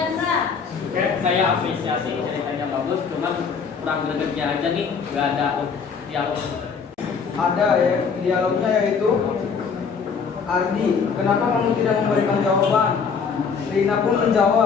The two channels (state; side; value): quieter; right; 5.8 dB